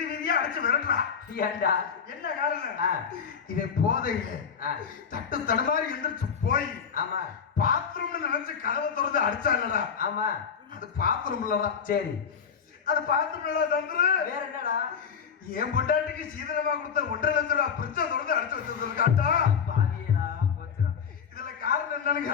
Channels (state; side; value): quieter; right; 6.9 dB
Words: வீதியா அடிச்சு விரட்டுறான். ஏன்டா? என்ன காரணம்? இவன் போதையில தட்டு தடுமாறி எந்திரிச்சு போய் ஆமா பாத்ரூம்னு நினைச்சு கதவை திறந்து அடிச்சான்லடா. ஆமா. அது பாத்ரூம் இல்லடா. சரி. அது பாத்ரூம் தந்துரு. வேற என்னடா? என் பொண்டாட்டிக்கு சீதனமா கொடுத்த 1.5 லட்சம் ரூபாய் பிரிச்ச திறந்து அடிச்சு வச்சிருக்காட்டா. இதுல காரணம் என்னன்னு